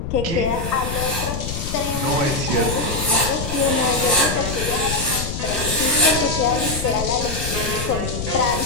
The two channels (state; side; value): noise; left; rumble, 5 dB below the sound